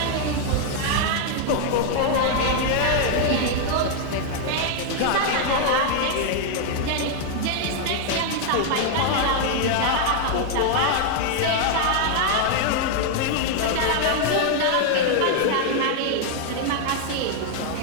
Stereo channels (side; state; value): both; different; correlation 0.00